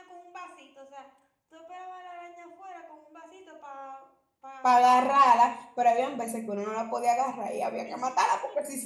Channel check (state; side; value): identical; both; correlation 1.00